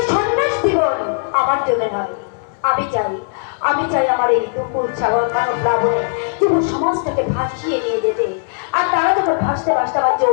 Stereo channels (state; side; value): silent; right; 64 dB below the other